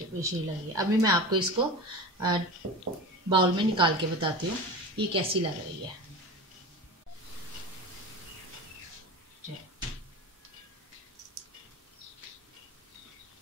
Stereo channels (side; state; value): both; normal; correlation 0.30